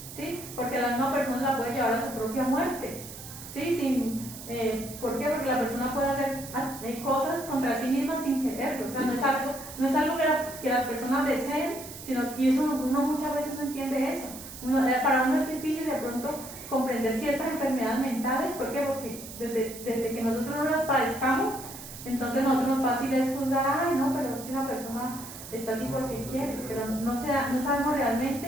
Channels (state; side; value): noise; right; hiss, 13 dB below the sound